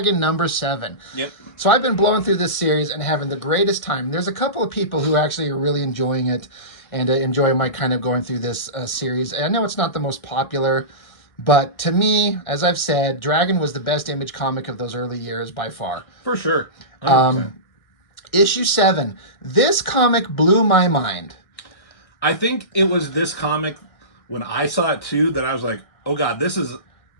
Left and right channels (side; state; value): right; late; 1.6 ms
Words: number 7. Yep. So I've been blowing through this series and having the greatest time. There's a couple of people who actually are really enjoying it and enjoy my kind of going through this series. I know it's not the most popular, but to me, as I've said, Dragon was the best Image comic of those early years by far. For sure. 100%. Issue 7. This comic blew my mind. I think it was this comic, when I saw it too, that I was like, oh God, this is